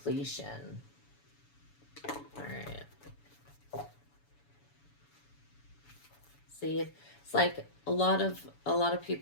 All right. See, it's like a lot of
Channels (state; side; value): late; right; 7.0 ms